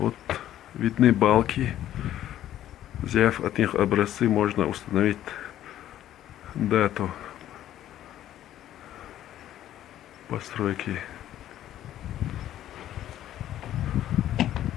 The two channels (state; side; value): quieter; right; 12.3 dB